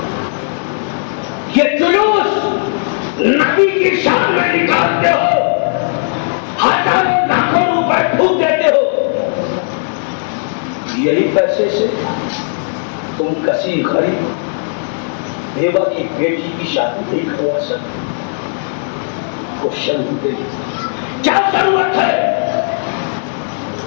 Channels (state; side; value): silent; right; 69 dB below the other